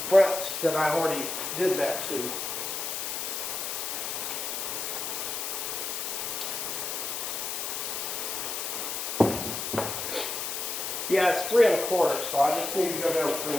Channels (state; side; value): noise; left; hiss, 3 dB below the sound